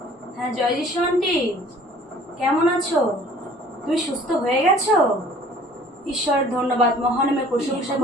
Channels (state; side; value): normal; both; correlation 0.52